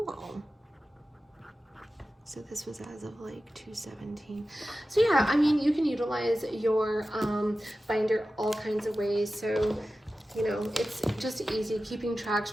So this was as of like 2/17. So yeah, I mean, you can utilize your binder all kinds of ways. So, you know, it's just easy, keeping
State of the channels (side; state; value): both; normal; correlation 0.94